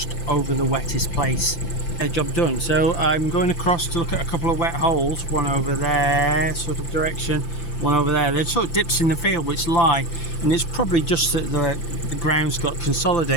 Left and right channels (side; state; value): right; late; 5.9 ms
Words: over the wettest place. Job done. So I'm going across to look at a couple of wet holes, one over there sort of direction, one over there. They're sort of dips in the field which lie, and it's probably just that the ground's got